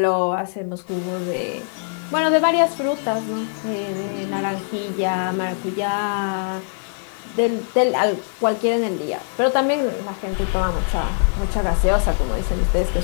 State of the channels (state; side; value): silent; right; digital silence